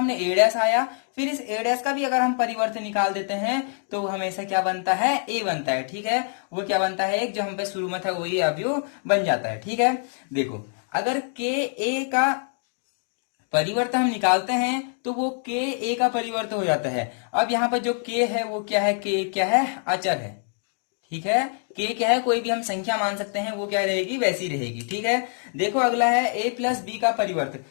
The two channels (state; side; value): silent; right; 55 dB below the other